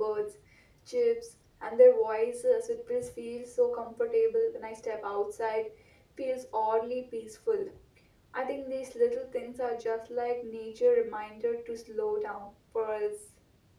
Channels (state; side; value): identical; both; correlation 1.00